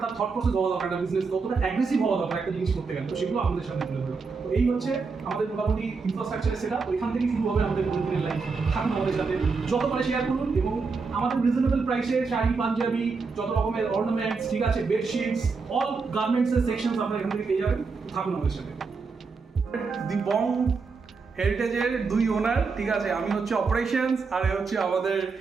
তার থট প্রসেস হওয়া দরকার, একটা বিজনেস কতটা অ্যাগ্রেসিভ হওয়া দরকার একটা জিনিস করতে গেলে, তো সেগুলো আমাদের সামনে তুলে ধরো। তো এই হচ্ছে আমাদের মোটামুটি ইনফ্রাস্ট্রাকচারের সেটা, তো এখান থেকেই শুরু হবে আমাদের প্রতিদিনের লাইফ। থাকুন আমাদের সাথে, যত পারে শেয়ার করুন, এবং আমাদের রিজনেবল প্রাইসে শাড়ি, পাঞ্জাবি, যত রকমের অর্নামেন্টস, ঠিক আছে, বেডশিটস, অল গার্মেন্টসের সেকশনস আপনারা এখান থেকে পেয়ে যাবেন। থাকুন আমাদের সাথে। দি বং হেরিটেজের দুই ওনার, ঠিক আছে, আমি হচ্ছে অপারেশনস, আর এ হচ্ছে আমাদের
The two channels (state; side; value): quieter; left; 4.7 dB